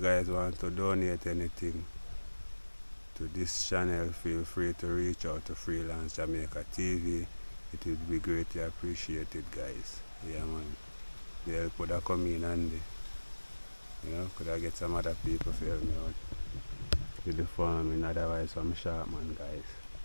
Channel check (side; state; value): both; inverted; correlation -1.00